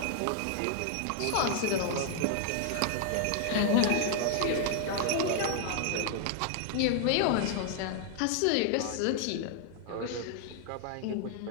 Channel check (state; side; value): different; both; correlation 0.00